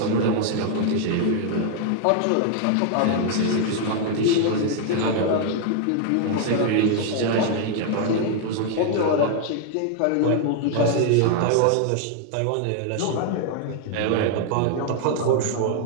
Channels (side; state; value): both; different; correlation 0.00